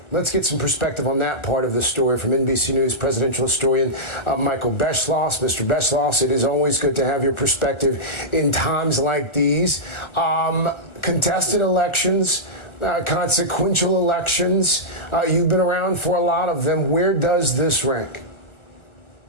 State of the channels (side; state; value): right; late; 1.3 ms